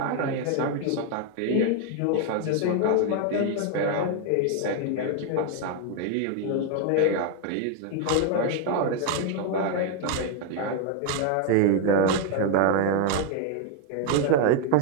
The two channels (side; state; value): both; different; correlation 0.01